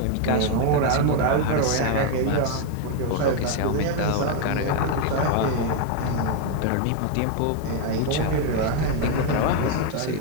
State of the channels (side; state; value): both; different; correlation 0.01